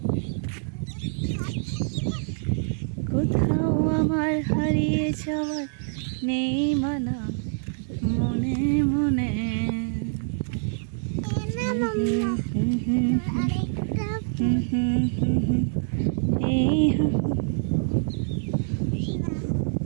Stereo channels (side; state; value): left; silent; 61 dB below the other